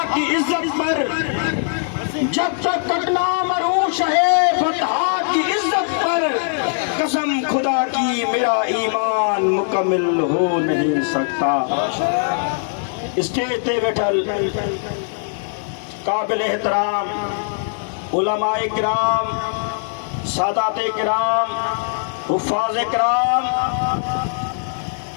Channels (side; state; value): right; silent; digital silence